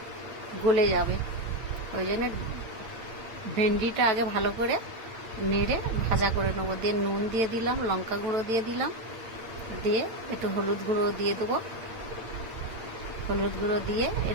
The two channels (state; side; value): late; left; 8.8 ms